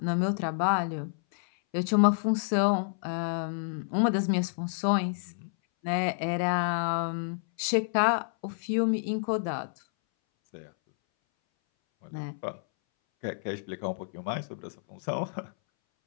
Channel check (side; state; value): right; silent; 58 dB below the other